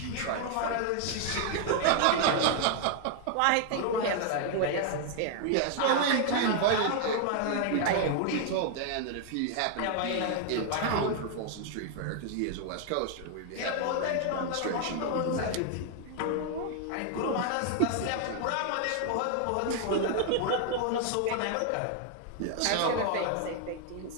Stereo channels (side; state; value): both; different; correlation 0.00